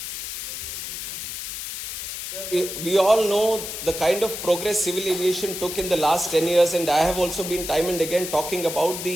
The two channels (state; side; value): noise; left; hiss, 6 dB below the sound